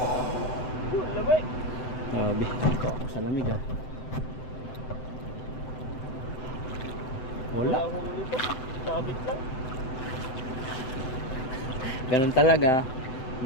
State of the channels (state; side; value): late; right; 7.8 ms